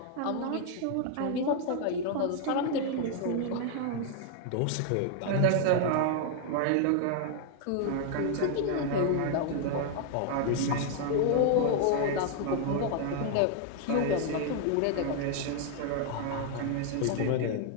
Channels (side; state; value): both; different; correlation 0.00